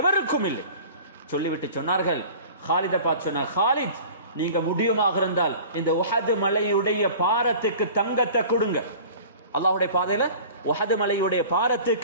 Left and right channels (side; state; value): both; inverted; correlation -0.42